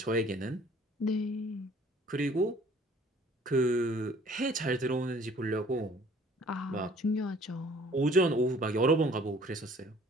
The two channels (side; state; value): both; normal; correlation 0.55